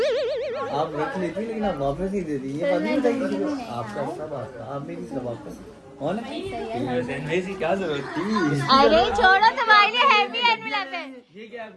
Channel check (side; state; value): both; identical; correlation 1.00